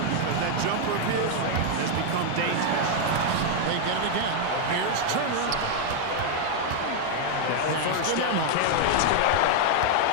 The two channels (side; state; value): both; different; correlation 0.00